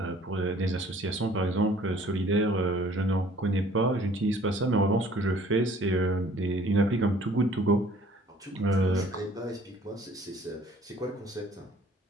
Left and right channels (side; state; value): both; normal; correlation 0.54